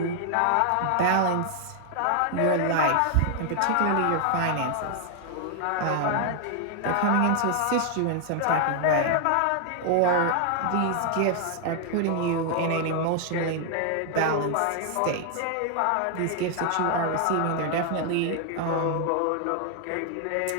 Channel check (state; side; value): different; both; correlation 0.00